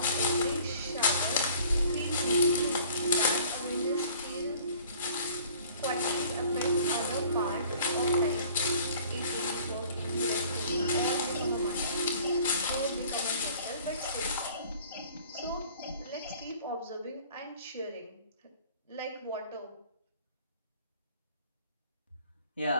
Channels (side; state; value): both; inverted; correlation -0.52